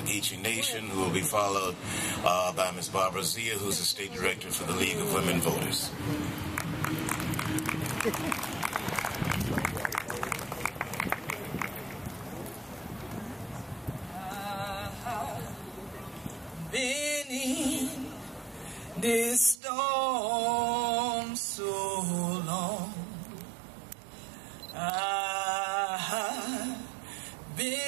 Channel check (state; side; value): drops out; left; at 19.6 s